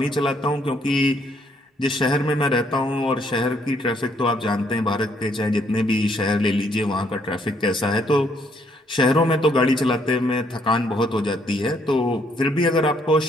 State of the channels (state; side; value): normal; both; correlation 0.68